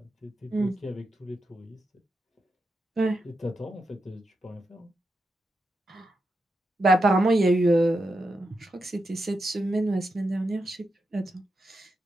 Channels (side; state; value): both; normal; correlation 0.86